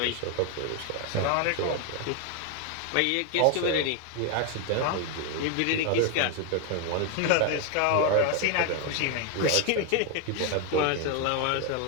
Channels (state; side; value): different; both; correlation 0.01